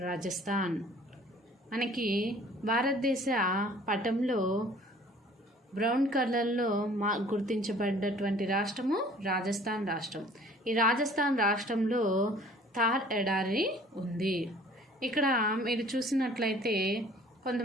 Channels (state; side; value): normal; both; correlation 0.52